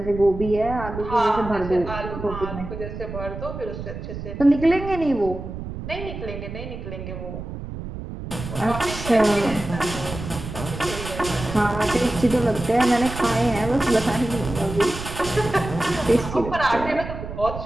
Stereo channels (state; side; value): noise; right; rumble, 9 dB below the sound